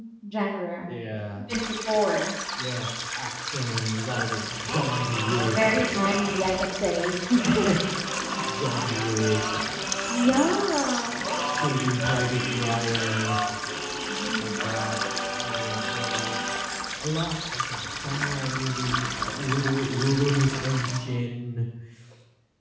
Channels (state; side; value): identical; both; correlation 1.00